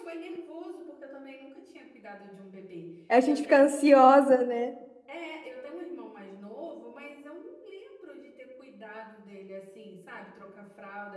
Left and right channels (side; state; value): both; identical; correlation 1.00